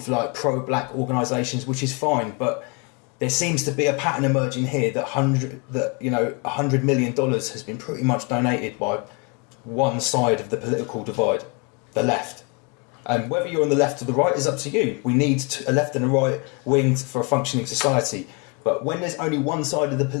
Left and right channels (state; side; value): quieter; right; 31.1 dB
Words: of like pro-black organisations, which is fine, but there seems to be a pattern emerging here that $100 million has been pretty much donated by one side of the political divide, the left. And whether you're on the left or the right is up to you. We need a left and a right wing for a functioning society. But when there's only one side of the